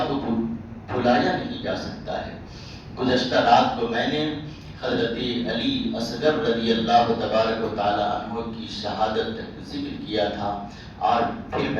کو بھلایا نہیں جا سکتا ہے۔ گزشتہ رات کو میں نے حضرت علی اصغر رضی اللہ تبارک و تعالی عنہ کی شہادت ذکر کیا تھا، اور پھر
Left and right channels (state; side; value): identical; both; correlation 1.00